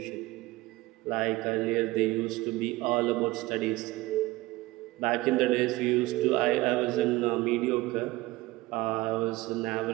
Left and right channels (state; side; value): quieter; left; 19.6 dB